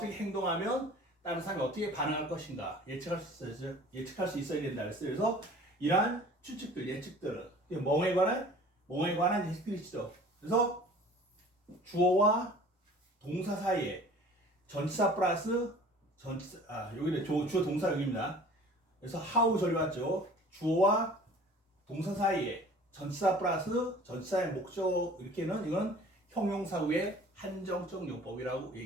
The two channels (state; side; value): normal; both; correlation 0.47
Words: 행동하면 다른 사람이 어떻게 반응할 것인가 예측할 수 있어야 된다 그랬어요. 그래서 이러한 추측들, 예측들은 뭐에 관한 예측들이죠. 그래서 주어와 동사 사이에 전치사 플러스 여기는 주어 동사 여기입니다. 그래서 how 절이 왔죠. 주어와 동사 사이에 전치사 플러스 전치사의 목적 이렇게는 이건 형용사 후의 한정적 용법이라고